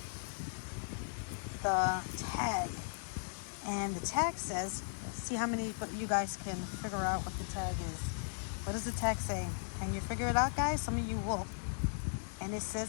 the tag. And the tag says, let's see how many you guys can figure out what the tag is. What does the tag say? Can you figure it out, guys? Some of you will. And it says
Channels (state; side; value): silent; right; digital silence